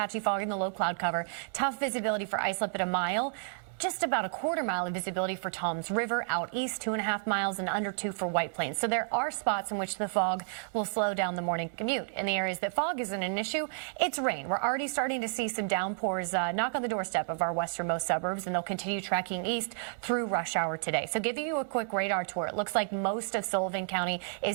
fog in the low cloud cover. Tough visibility for Islip at 1 mile. just about a quarter mile of visibility for Toms River, out east 2.5 miles, and under 2 for White Plains. So there are spots in which the fog will slow down the morning commute. In the areas that fog isn't an issue, it's rain. We're already starting to see some downpours knock on the doorstep of our westernmost suburbs, and they'll continue tracking east through rush hour today. So giving you a quick radar tour, it looks like most of Sullivan County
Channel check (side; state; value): left; silent; 57 dB below the other